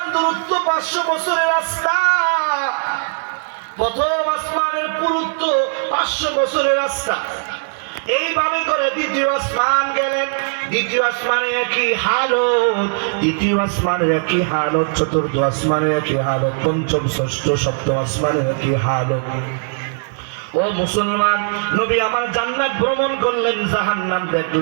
দূরত্ব 500 বছরের রাস্তা। প্রথম আসমানের পুরুত্ব 500 বছরের রাস্তা। এইভাবে করে দ্বিতীয় আসমান গেলেন। দ্বিতীয় আসমানে একই হালত, তৃতীয় আসমানের একই হালত, চতুর্থ আসমানের একই হালত, পঞ্চম ষষ্ঠ সপ্তম আসমানের একই হালত। ও মুসলমান, নবী আমার জান্নাত ভ্রমণ করলেন, জাহান্নাম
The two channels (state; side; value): silent; left; 66 dB below the other